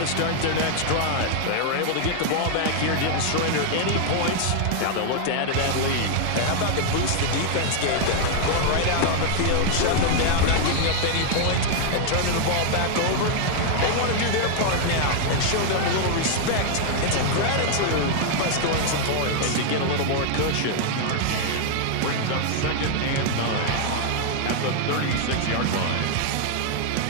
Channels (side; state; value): both; different; correlation 0.00